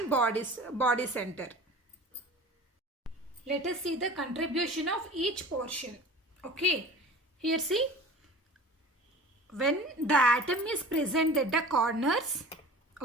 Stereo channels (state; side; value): normal; both; correlation 0.40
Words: body center. Let us see the contribution of each portion. Okay, here see, when the atom is present at the corners,